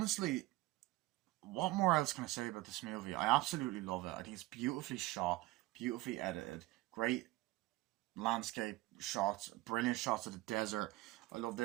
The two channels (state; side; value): quieter; left; 19.2 dB